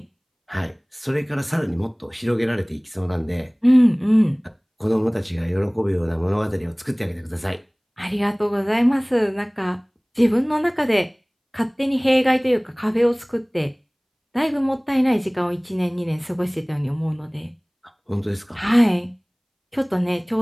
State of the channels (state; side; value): identical; both; correlation 1.00